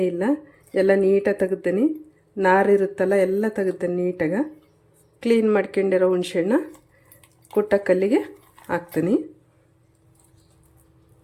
ಎಲ್ಲ ನೀಟಾಗಿ ತೆಗೆದ್ದೀನಿ. ನಾರಿರುತ್ತಲ್ಲ ಎಲ್ಲ ತೆಗೆದ್ದೇನೆ ನೀಟಾಗಿ. ಕ್ಲೀನ್ ಮಾಡ್ಕೊಂಡಿರೋ ಹುಣಸೆಹಣ್ಣ ಕುಟ್ಟ ಕಲ್ಲಿಗೆ ಹಾಕ್ತೀನಿ.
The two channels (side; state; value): both; identical; correlation 1.00